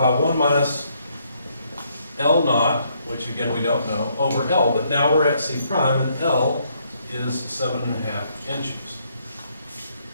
1 minus L naught, which again we don't know, over L, but now we're at C prime, and L is 7.5 inches.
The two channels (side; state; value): both; inverted; correlation -0.71